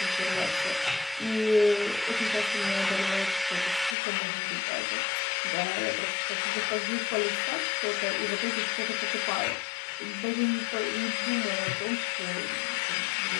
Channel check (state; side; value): drops out; right; at 4.0 s